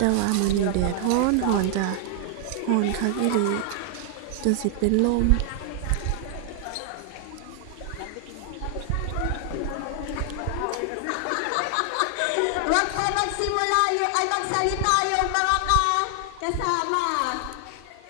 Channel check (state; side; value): different; both; correlation 0.00